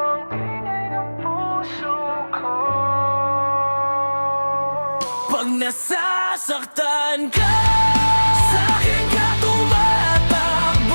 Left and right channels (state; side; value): inverted; both; correlation -1.00